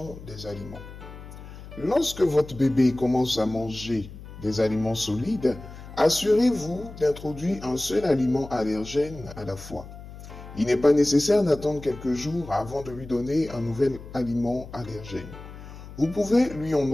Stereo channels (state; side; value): noise; left; hum, 15 dB below the sound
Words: des aliments. Lorsque votre bébé commence à manger des aliments solides, assurez-vous d'introduire un seul aliment allergène à la fois. Il n'est pas nécessaire d'attendre quelques jours avant de lui donner un nouvel aliment allergène. Vous pouvez lui en